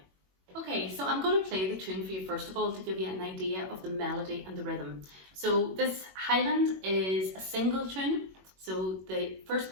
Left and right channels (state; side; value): late; left; 21 ms